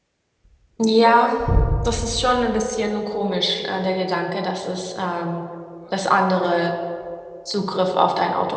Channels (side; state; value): both; identical; correlation 1.00